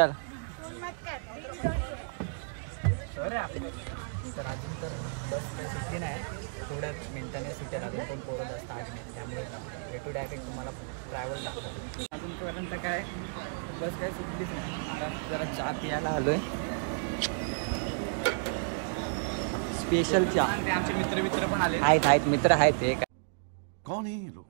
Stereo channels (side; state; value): left; silent; digital silence